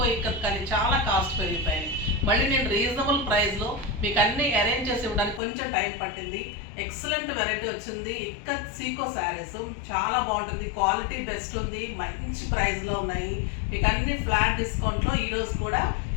ఇక్కత్ కానీ చాలా కాస్ట్ పెరిగిపోయినాయి. మళ్ళీ నేను రీజనబుల్ ప్రైస్లో మీకు అన్నీ అరేంజ్ చేసి ఇవ్వడానికి కొంచెం టైం పట్టింది. ఎక్సలెంట్ వెరైటీ వచ్చింది. ఇక్కత్ సీకో శారీస్ చాలా బాగుంటుంది, క్వాలిటీ బెస్ట్ ఉంది, మంచి ప్రైస్లో ఉన్నాయి. మీకు అన్ని ఫ్లాట్ డిస్కౌంట్లో ఈరోజు కూడా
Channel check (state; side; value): drops out; right; at 5.4 s